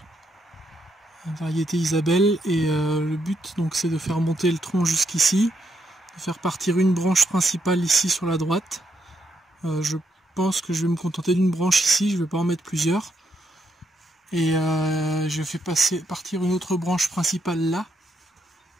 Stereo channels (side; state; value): both; normal; correlation 0.78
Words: une variété Isabelle, et le but donc c'est de faire monter le tronc jusqu'ici, de faire partir une branche principale ici sur la droite. Je pense que je vais me contenter d'une branche ici, je ne vais pas en mettre plusieurs. Et je fais partir une autre branche principale là.